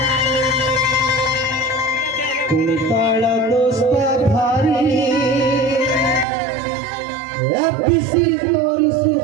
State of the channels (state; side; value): drops out; left; at 6.2 s